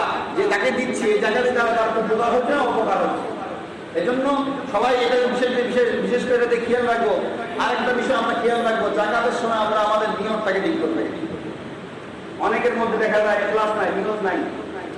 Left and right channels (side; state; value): both; identical; correlation 1.00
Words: যে তাকে দিচ্ছি, এই জাকাতে তার উপকার হচ্ছে না অপকার হচ্ছে। এজন্য সবাই এটা বিশেষ করে এটাতে খেয়াল রাখবো। আরেকটা বিষয় আমরা খেয়াল রাখবো, জাকাতের সময় আমরা আমাদের নিয়তটাকে ঠিক করতে। অনেকের মধ্যে দেখা যায় ক্লাস নাই, নিয়ত নাই।